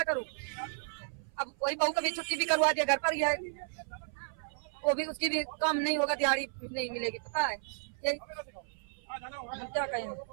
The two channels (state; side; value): silent; left; 55 dB below the other